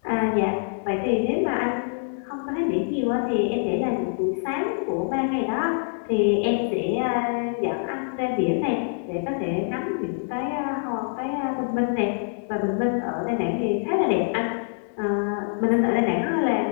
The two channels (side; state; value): right; silent; digital silence